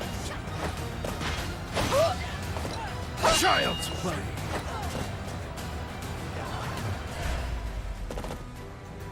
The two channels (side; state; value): both; identical; correlation 1.00